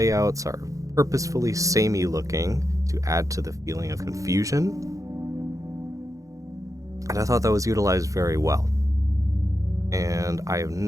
are purposefully samey looking to add to the feeling of confusion. And I thought that was utilized very well. And I have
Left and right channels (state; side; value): late; left; 0.16 ms